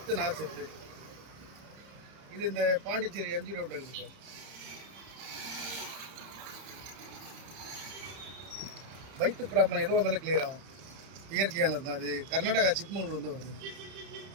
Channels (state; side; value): late; left; 30 ms